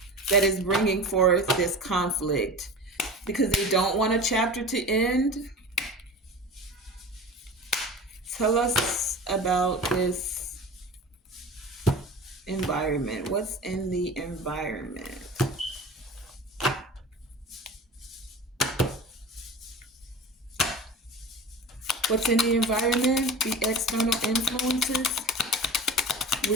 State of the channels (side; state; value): both; normal; correlation 0.34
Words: that is bringing forth this conflict because they don't want a chapter to end. Tell us about this environment. What's in the environment? What's in the environment? The external influences